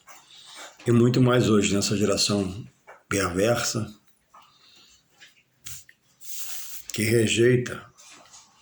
e muito mais hoje, nessa geração perversa, que rejeita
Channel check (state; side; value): identical; both; correlation 1.00